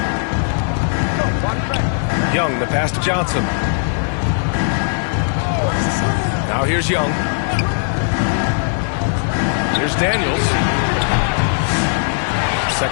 Young, the pass to Johnson. Now here's Young. Here's Daniels.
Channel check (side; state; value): right; silent; digital silence